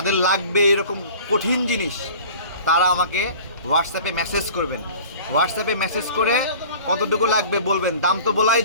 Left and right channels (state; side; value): inverted; both; correlation -0.43